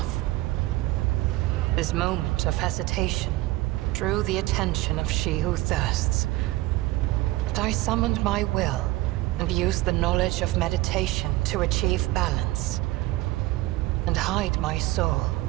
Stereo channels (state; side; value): quieter; left; 18.7 dB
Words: This moment of hesitation drew the attention of She Who Thirsts, but I summoned my will and used the knowledge of meditation to achieve balance, and hide my soul